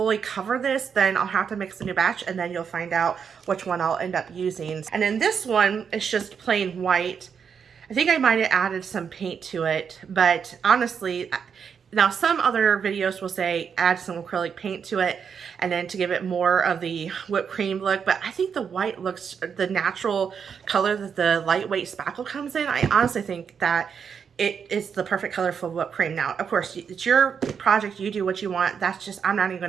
cover this, then I'll have to mix a new batch, and then you'll find out which one I'll end up using. And then this one is just plain white. I think I might have added some paint to it, but honestly, now some other videos will say add some acrylic paint to it and then to give it more of the whipped cream look, but I think the white looks, the natural color that the lightweight spackle comes in, I honestly think that it is the perfect color for whipped cream. Now, of course, it's your project, you do what you want. That's just, I'm not even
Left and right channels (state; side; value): quieter; left; 6.8 dB